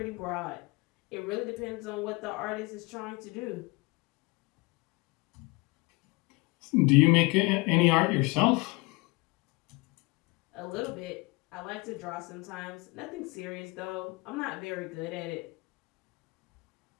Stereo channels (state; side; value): quieter; right; 25.2 dB